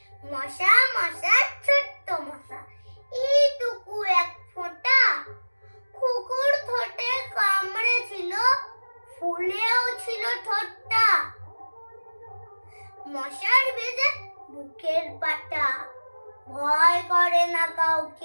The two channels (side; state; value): both; inverted; correlation -1.00